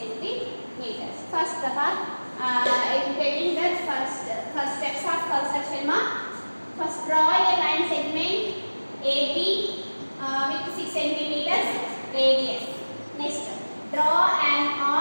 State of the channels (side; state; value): both; inverted; correlation -1.00